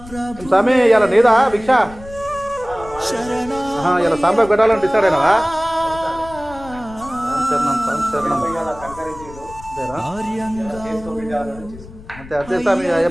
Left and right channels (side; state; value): left; noise; rumble, 17 dB below the sound